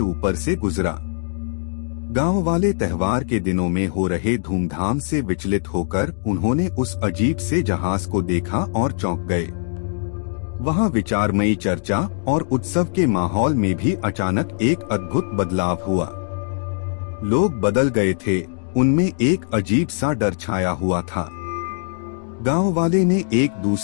ऊपर से गुजरा। गांव वाले त्योहार के दिनों में हो रहे धूमधाम से विचलित होकर उन्होंने उस अजीब से जहाज को देखा और चौंक गए। वहां विचारमयी चर्चा और उत्सव के माहौल में भी अचानक एक अद्भुत बदलाव हुआ। लोग बदल गए थे, उनमें एक अजीब सा डर छाया हुआ था। गांव वाले ने एक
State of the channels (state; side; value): silent; right; digital silence